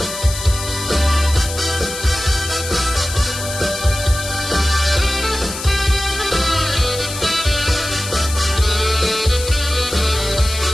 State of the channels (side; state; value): left; noise; hiss, 8 dB below the sound